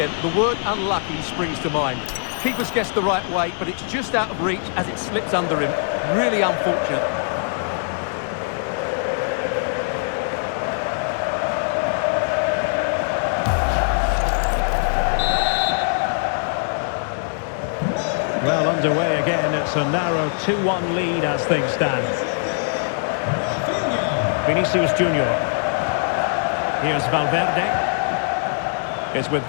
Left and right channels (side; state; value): right; silent; 58 dB below the other